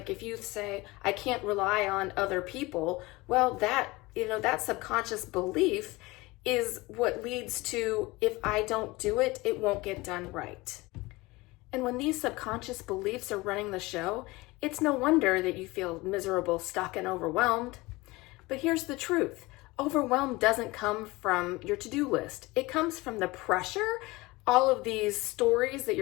if you say, I can't rely on other people, well, that subconscious belief is what leads to, if I don't do it, it won't get done right. And when these subconscious beliefs are running the show, it's no wonder that you feel miserable, stuck, and overwhelmed. But here's the truth. Overwhelm doesn't come from your to-do list. It comes from the pressure, all of these stories that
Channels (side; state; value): right; quieter; 21.8 dB